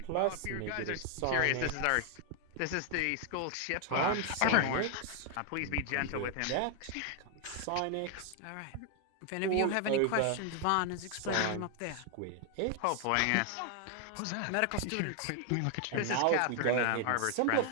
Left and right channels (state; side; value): different; both; correlation 0.00